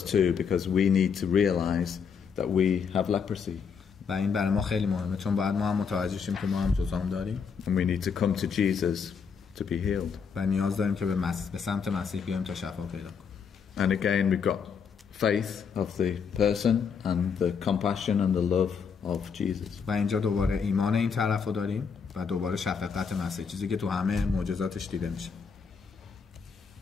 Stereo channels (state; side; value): quieter; right; 6.3 dB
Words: too, because we need to realize that we have leprosy. و این برای ما خیلی مهمه چون باید ما هم متوجه شیم که ما هم جذام داریم. And we need to come to Jesus to be healed. و نیاز داریم که به سمت مسیح بیایم تا شفا پیدا کنیم. And again we've got faith of the person and the compassion and the love of Jesus. و اینجا دوباره ایمان این طرفو داریم و دوباره شفقت مسیح، چیزی که تو همه معجزاتش دیده میشه.